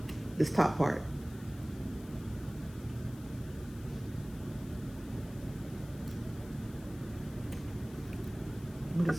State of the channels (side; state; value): left; noise; hiss, 21 dB below the sound